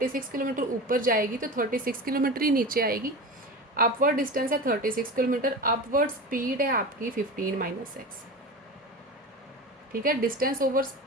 किलोमीटर ऊपर जाएगी तो 36 किलोमीटर ही नीचे आएगी। अपवर्ड डिस्टेंस है 36 किलोमीटर, अपवर्ड स्पीड है आपकी 15 माइनस एक्स। ठीक है, डिस्टेंस ओवर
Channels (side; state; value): both; normal; correlation 0.29